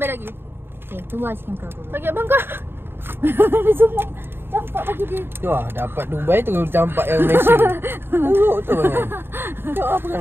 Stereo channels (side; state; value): left; late; 0.11 ms